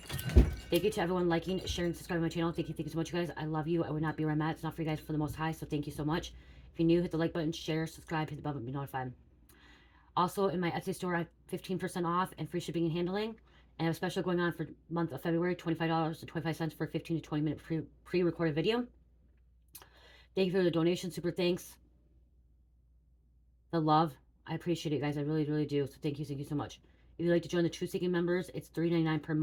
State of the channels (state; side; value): identical; both; correlation 1.00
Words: Thank you to everyone liking, sharing, subscribing to my channel. Thank you so much, you guys. I love you. I would not be where I'm at. It's not for you guys, for the most high. So thank you so much. If you're new, hit the like button, share, subscribe, hit the bell button, be notified. Also, in my Etsy store, I have 15% off and free shipping and handling. And I have a special going on for month of February, $25.25 for a 15 to 20 minute pre-recorded video. Thank you for the donation. Super thanks. The love. I appreciate it, guys. I really, really do. So thank you so much. If you'd like to join the Truth Seeking members, it's $3.99 per